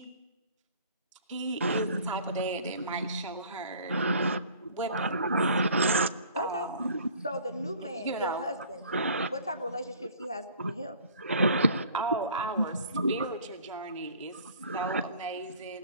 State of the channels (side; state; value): both; inverted; correlation -0.50